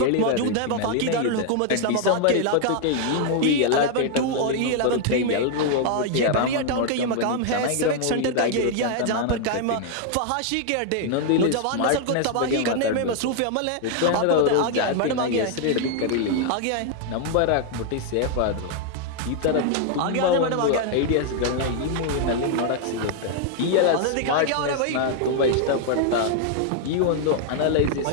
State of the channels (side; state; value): both; different; correlation 0.00